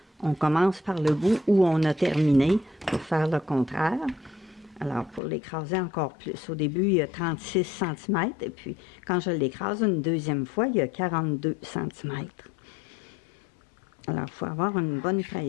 on commence par le bout où on a terminé pour faire le contraire. Alors, pour l'écraser encore plus, au début, il y a 36 cm, et puis quand je l'écrase une deuxième fois, il y a 42 cm. Alors, il faut avoir une bonne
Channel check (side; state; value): right; drops out; at 5.2 s